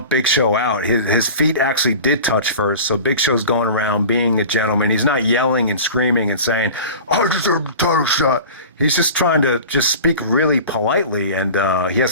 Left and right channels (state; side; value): inverted; both; correlation -0.37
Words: Big Show out, his feet actually did touch first. So Big Show's going around being a gentleman. He's not yelling and screaming and saying, I deserve the title shot. He's just trying to just speak really politely, and he